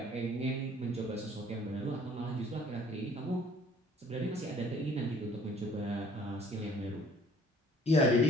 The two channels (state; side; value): normal; both; correlation 0.55